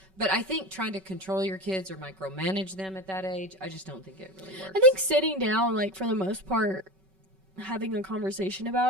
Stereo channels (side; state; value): left; late; 5.3 ms